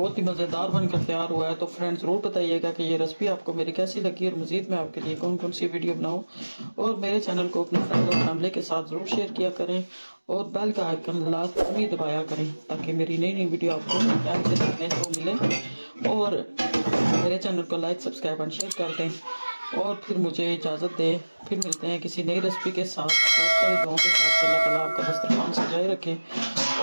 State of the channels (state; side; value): inverted; both; correlation -1.00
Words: ही मज़ेदार बनकर तैयार हुआ है। तो फ्रेंड्स ज़रूर बताइएगा कि ये रेसिपी आपको मेरी कैसी लगी, और मज़ीद मैं आपके लिए कौन कौन सी वीडियो बनाऊं। और मेरे चैनल को अपने फ्रेंड और फैमिली के साथ ज़रूर शेयर किया करें, और बेल का आइकन लाजमी दबाया करें ताकि मेरी नई नई वीडियो आपको टाइम से देखने को मिले। और मेरे चैनल को लाइक सब्सक्राइब एंड शेयर कर दें और फिर मुझे इजाज़त दें। फिर मिलते हैं किसी नई रेसिपी के साथ, बहुत सारी दुआओं के साथ। अल्लाह ताला आपका दस्तरखान सजाए रखे